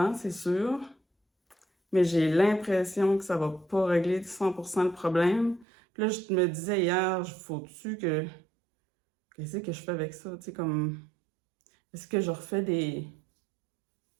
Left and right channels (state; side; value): drops out; left; at 5.7 s